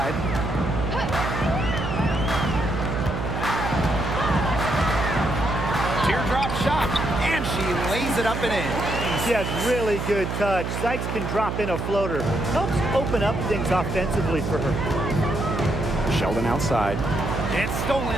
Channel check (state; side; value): noise; right; hum, 3 dB below the sound